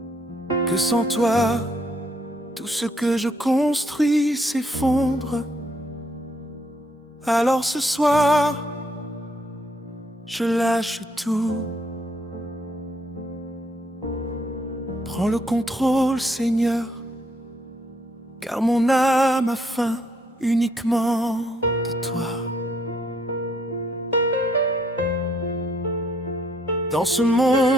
que sans toi, tout ce que je construis s'effondre. Alors ce soir, je lâche tout. Prends le contrôle, Seigneur, car mon âme a faim uniquement de toi. Dans ce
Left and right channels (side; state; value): both; normal; correlation 0.70